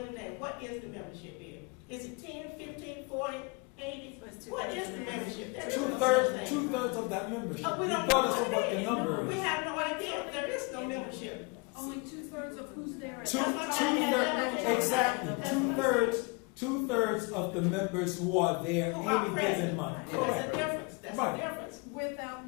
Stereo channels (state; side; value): quieter; right; 29.8 dB